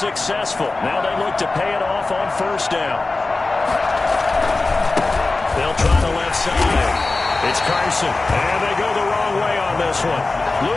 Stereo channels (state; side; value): quieter; right; 3.4 dB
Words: Now they look to pay it off on first down. They'll try the left side. It's Carson, and they go the wrong way on this one.